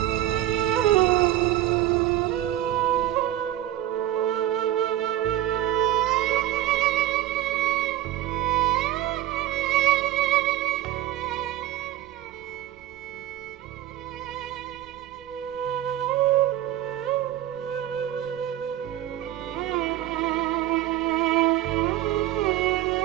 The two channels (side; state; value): left; quieter; 13.5 dB